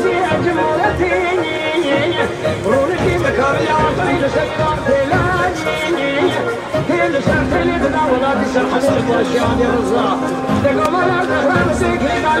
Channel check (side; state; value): both; identical; correlation 1.00